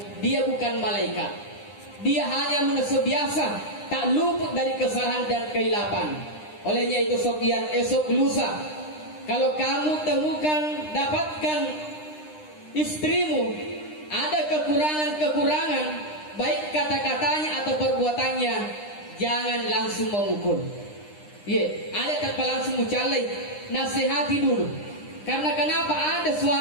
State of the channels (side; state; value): right; late; 9.8 ms